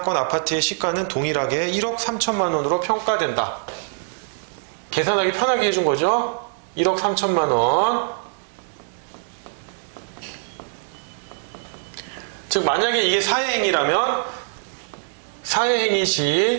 아파트의 시가는 동일하게 1억 3천만 원으로 평가된다. 계산하기 편하게 해준 거죠. 1억 3천만 원. 즉 만약에 이게 사회행위라면 사회행위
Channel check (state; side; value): silent; left; digital silence